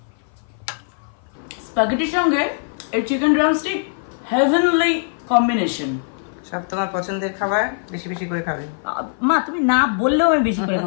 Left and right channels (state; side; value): silent; right; 57 dB below the other